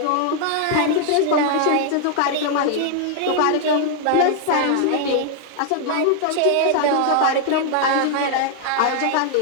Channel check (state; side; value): different; both; correlation 0.00